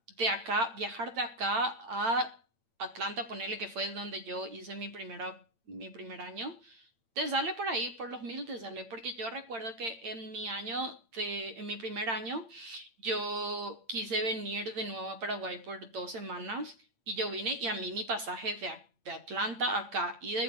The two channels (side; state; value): left; late; 8.8 ms